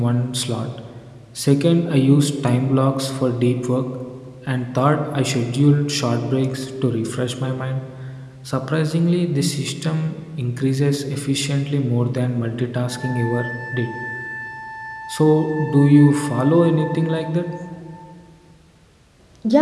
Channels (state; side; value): identical; both; correlation 1.00